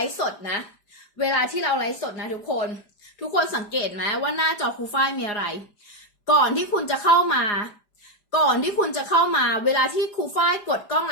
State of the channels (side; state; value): right; late; 4.8 ms